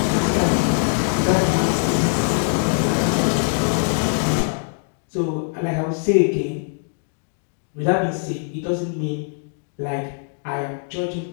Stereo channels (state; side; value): silent; right; digital silence